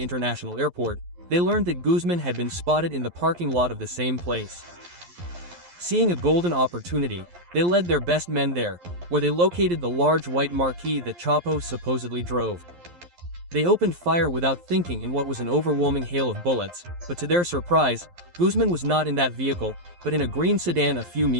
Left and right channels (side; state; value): left; late; 11 ms